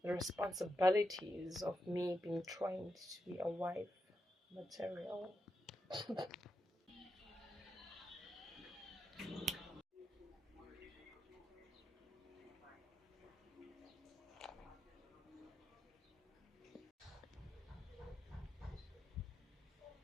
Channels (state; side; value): normal; both; correlation 0.86